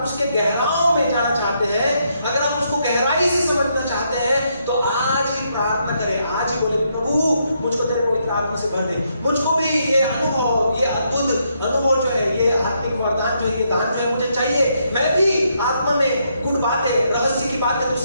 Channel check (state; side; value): inverted; both; correlation -0.76